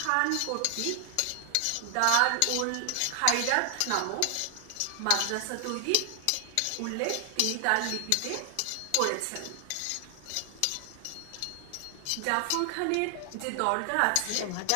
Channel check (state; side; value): different; both; correlation 0.00